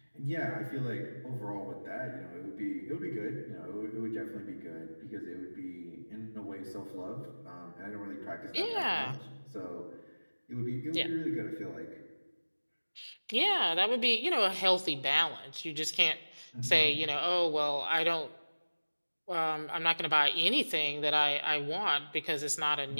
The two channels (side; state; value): both; inverted; correlation -1.00